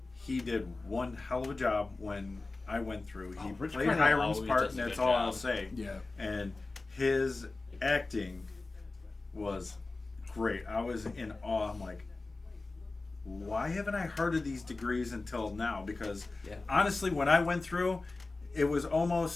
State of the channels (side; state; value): right; quieter; 3.4 dB